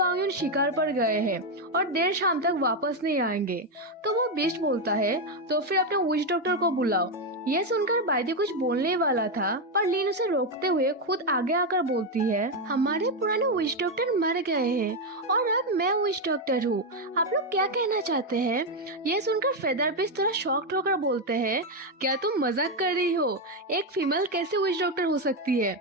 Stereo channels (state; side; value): normal; both; correlation 0.06